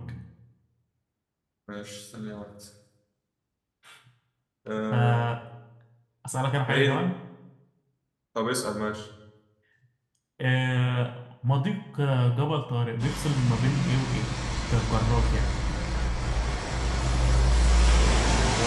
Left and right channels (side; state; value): both; identical; correlation 1.00